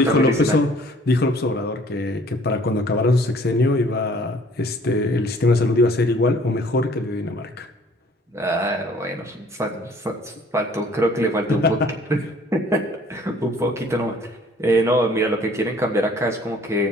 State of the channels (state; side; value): normal; both; correlation 0.55